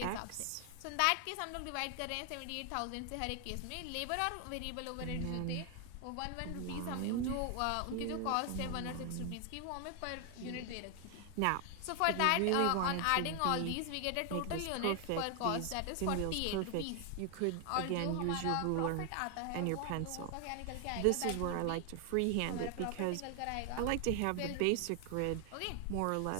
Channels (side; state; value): both; different; correlation 0.00